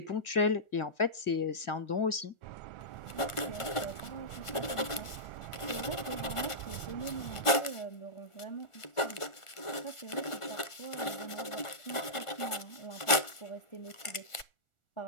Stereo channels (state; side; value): late; right; 1.5 ms